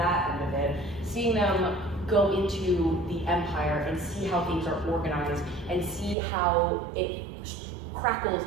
end of it, seeing them go into the Empire and see how things are organized and see how it crackles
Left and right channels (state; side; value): drops out; left; at 6.2 s